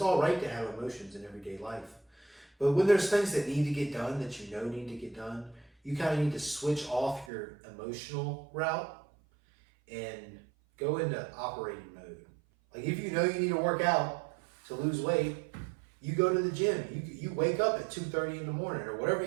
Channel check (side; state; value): left; drops out; at 7.3 s